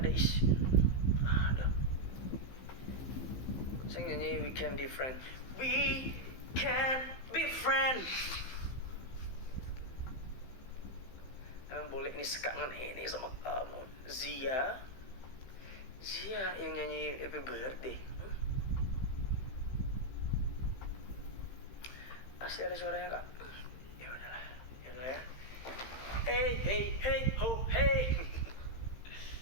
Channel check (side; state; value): right; late; 16 ms